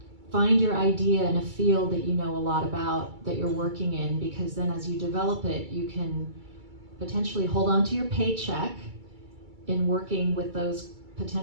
find your idea in a field that you know a lot about, that you're working in, because then as you develop it, you can potentially hold on to your paycheck in working with those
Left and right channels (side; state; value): left; late; 2.3 ms